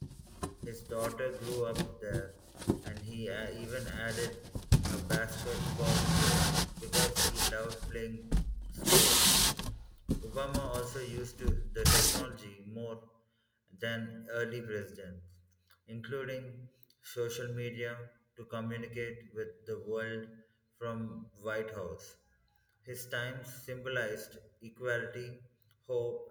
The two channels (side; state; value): both; identical; correlation 1.00